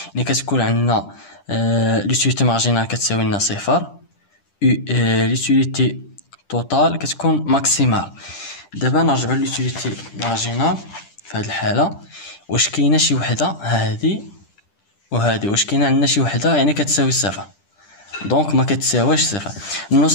يعني كتكون عندنا لوتيليتي مارجينال كتساوي لنا 0 l'utilité totale كتكون ماكسيمال. دابا نرجعوا لليوتيليتي مارجينال في هذه الحاله، واش كاينه شي وحده هذه وهذه، واش كاينه عندنا شي وحده يعني كتساوي صفر؟ دونك ما كتساواش صفر. نو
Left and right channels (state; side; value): late; right; 10 ms